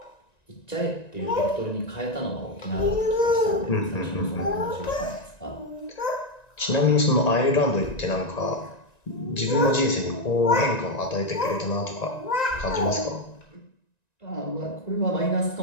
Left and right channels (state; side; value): late; right; 1.9 ms